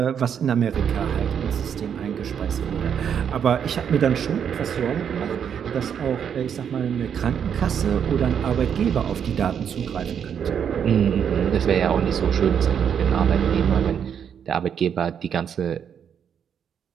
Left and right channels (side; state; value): left; quieter; 8.0 dB